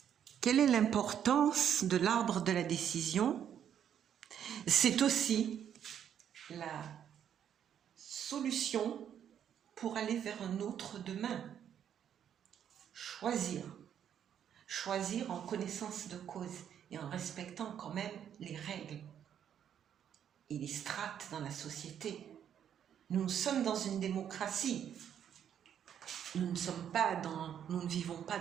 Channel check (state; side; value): quieter; left; 9.2 dB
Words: Quelle est l'importance de l'arbre de la décision? C'est aussi la solution pour aller vers un autre demain. Choisir en connaissance de cause et en respectant quand même les règles et les strates dans la société. Nous sommes dans une démocratie. Nous ne vivons pas